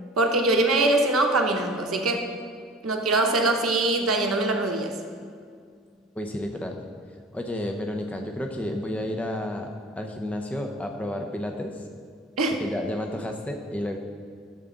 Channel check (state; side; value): normal; both; correlation 0.42